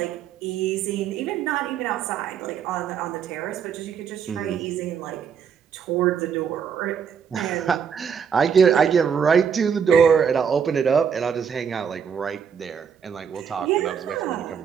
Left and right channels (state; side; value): quieter; left; 7.2 dB